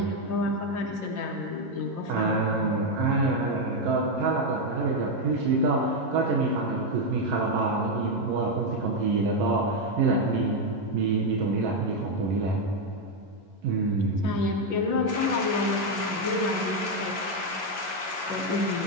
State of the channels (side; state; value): left; late; 11 ms